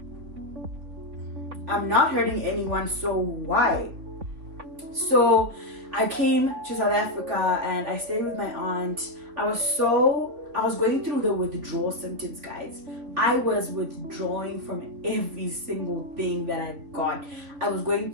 I'm not hurting anyone, so why? So I came to South Africa and I stayed with my aunt. I was going through the withdrawal symptoms, guys. I was withdrawing from every single thing that I got. I was going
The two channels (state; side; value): late; left; 3.8 ms